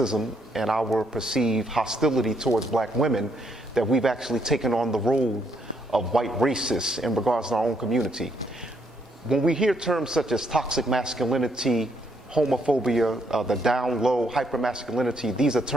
and our perceived hostility towards black women, that we've actually taken on the role of white racists in regards to our own community. When we hear terms such as toxic masculinity, homophobia, the down low, hypermasculinity, these are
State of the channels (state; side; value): normal; both; correlation 0.73